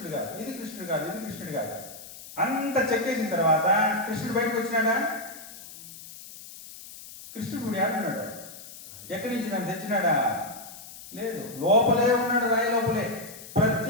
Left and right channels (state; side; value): noise; left; hiss, 15 dB below the sound